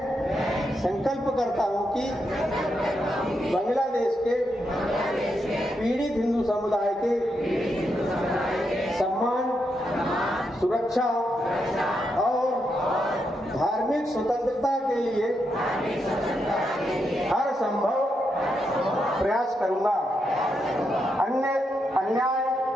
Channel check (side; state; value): both; normal; correlation 0.82